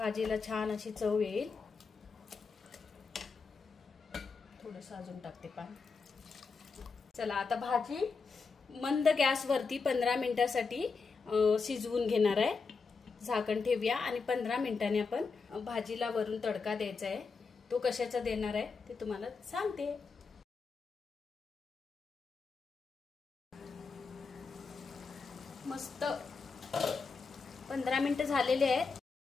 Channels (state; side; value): quieter; right; 4.8 dB